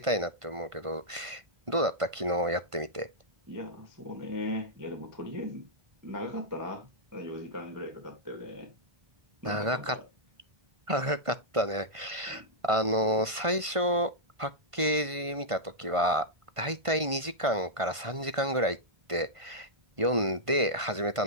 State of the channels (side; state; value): left; late; 1.5 ms